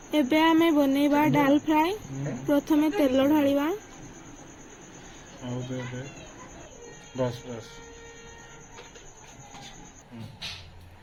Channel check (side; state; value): both; identical; correlation 1.00